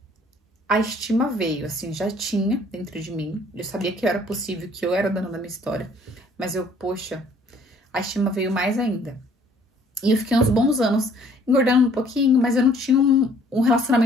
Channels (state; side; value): normal; both; correlation 0.59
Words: a estima veio, assim, já tinha dentro de mim. Eu sabia que era possível, que eu era dona da minha história. Mas eu, poxa, a estima veio mais ainda. E eu fiquei uns bons anos engordando um pouquinho, mas eu não tinha um